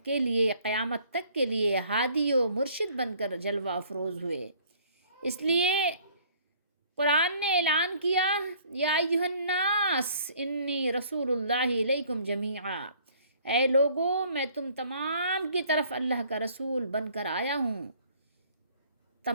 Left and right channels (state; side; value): inverted; both; correlation -0.57